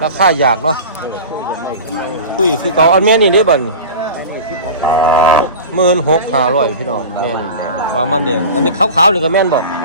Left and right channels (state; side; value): inverted; both; correlation -0.33